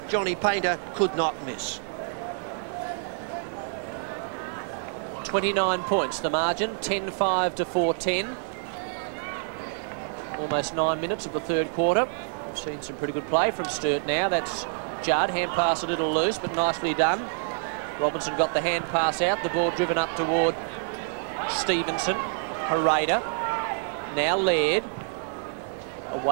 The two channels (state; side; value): silent; left; digital silence